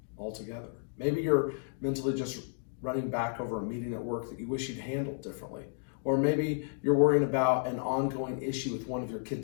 altogether? Maybe you're mentally just running back over a meeting at work that you wish you'd handled differently. Or maybe you're worrying about an ongoing issue with one of your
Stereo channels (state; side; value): silent; right; digital silence